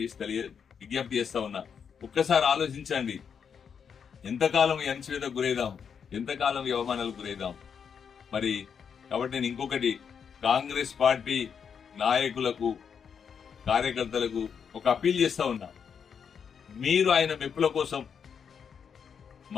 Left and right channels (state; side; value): quieter; right; 7.0 dB